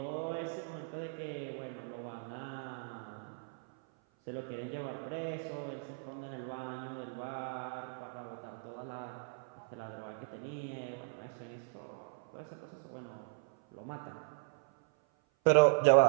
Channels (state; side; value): silent; left; 53 dB below the other